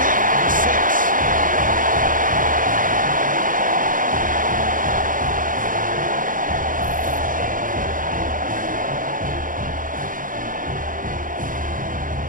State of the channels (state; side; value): late; left; 0.39 ms